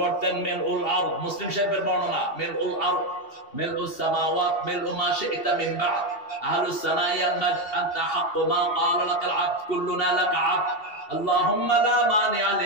মিলউল আরদ, মুসলিম শরীফের বর্ণনা, মিলউল আরদ মিলউস সামাওয়াত মিলউ মা শি'তা মিন বা'দ আহলুস সানাই আল মাjd আনতা হাক্কু মা ক্বালা লাকাল আবদ কুল্লুনা লাকা আবদ আল্লাহুম্মা লা মানি'a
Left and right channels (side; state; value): right; late; 2.7 ms